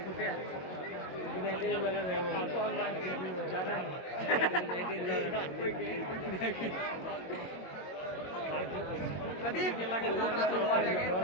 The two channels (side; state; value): right; late; 22 ms